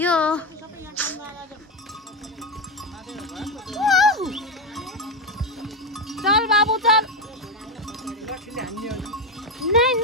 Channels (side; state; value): both; normal; correlation 0.11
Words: चल बाबु चल